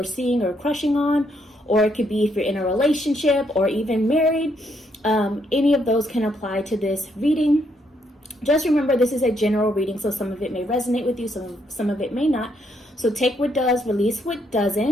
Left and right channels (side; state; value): both; normal; correlation 0.74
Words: seeing or crushing on, or it could be if you're in a relationship or even married. Any of those can apply to this reading. Just remember, this is a general reading, so some of it may resonate with you, some of it may not. So take what does, release what